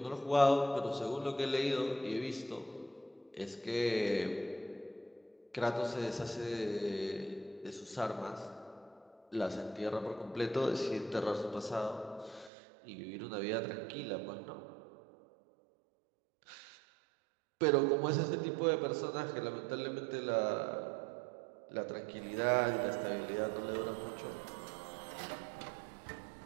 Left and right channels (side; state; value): left; drops out; at 12.5 s